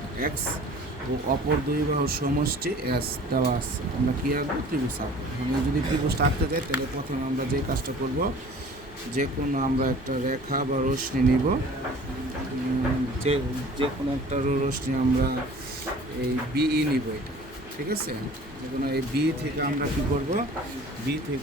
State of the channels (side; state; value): both; normal; correlation 0.47